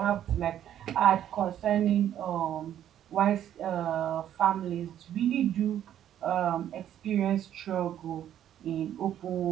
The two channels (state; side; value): quieter; left; 10.8 dB